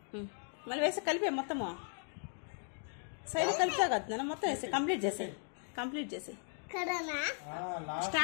మళ్ళీ వేసి కలిపే మొత్తము సైడ్ కలిపా కదా మొత్తం వేసి కంప్లీట్ చేసి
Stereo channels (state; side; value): silent; right; 53 dB below the other